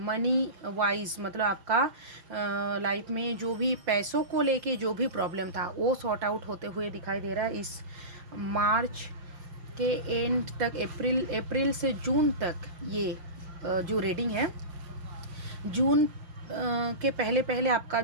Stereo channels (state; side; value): late; left; 5.7 ms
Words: वाइज, मतलब आपका लाइफ में जो भी पैसों को लेके जो भी प्रॉब्लम था वो सॉर्ट आउट होते हुए दिखाई दे रहा है। इस मार्च के एंड तक, अप्रैल से जून तक ये जो रीडिंग है, जून के पहले पहले आपका